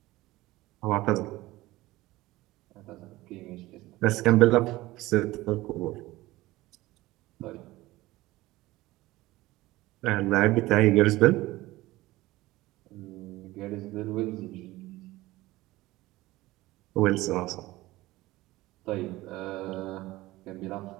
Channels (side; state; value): left; quieter; 18.4 dB